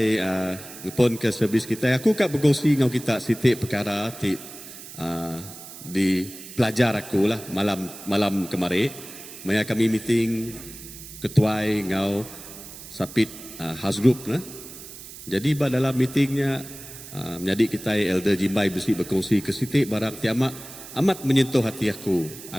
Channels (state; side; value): noise; right; hiss, 14 dB below the sound